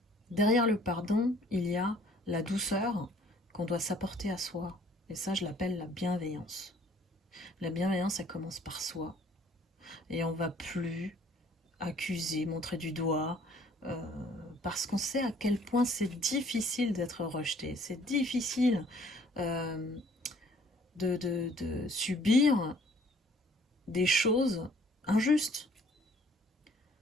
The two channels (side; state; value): both; normal; correlation 0.58